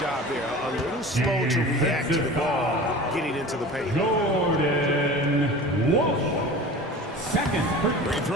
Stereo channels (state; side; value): normal; both; correlation 0.37